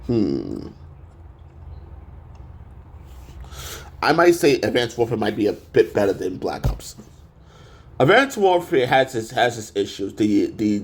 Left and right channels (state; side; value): identical; both; correlation 1.00